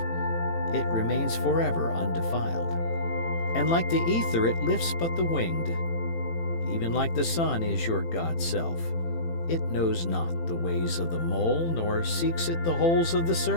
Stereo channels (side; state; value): right; late; 18 ms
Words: it remains forever undefiled. And like the ether it lifts but the winged. Even like the sun is your God self, it knows not the ways of the mole, nor seeks it the holes of the